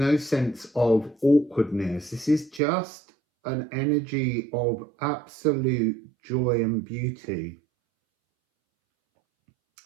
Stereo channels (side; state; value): left; drops out; at 2.6 s